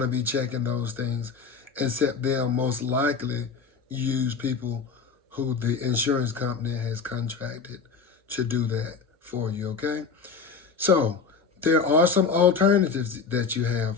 to be checking those things, except they'll most likely use people who the insurance company has contracted to do that for you, okay? So there are some alternatives that you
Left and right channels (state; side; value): quieter; right; 5.3 dB